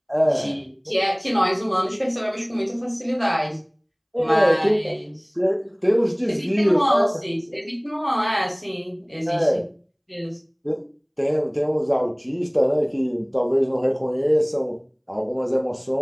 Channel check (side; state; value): both; identical; correlation 1.00